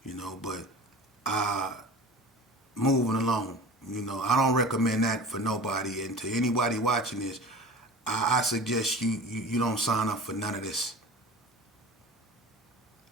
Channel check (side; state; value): both; normal; correlation 0.38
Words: But moving along, I don't recommend that for nobody, and to anybody watching this, I suggest you don't sign up for none of this.